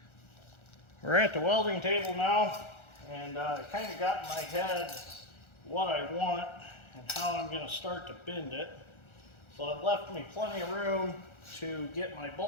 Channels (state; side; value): late; right; 1.4 ms